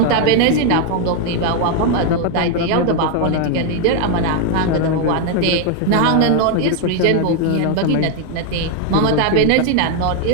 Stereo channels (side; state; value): both; different; correlation 0.01